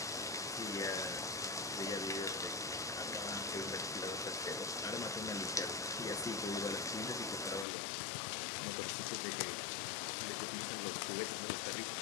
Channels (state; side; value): drops out; right; at 7.7 s